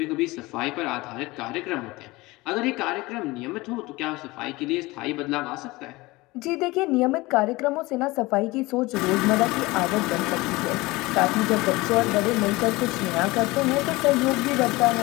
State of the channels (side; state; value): right; quieter; 21.4 dB